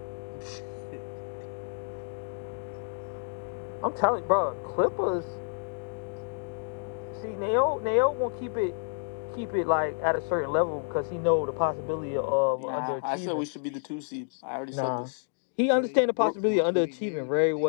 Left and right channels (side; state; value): right; silent; digital silence